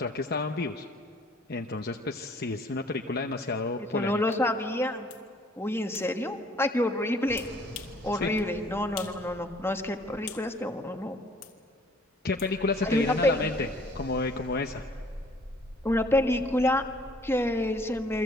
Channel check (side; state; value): both; normal; correlation 0.57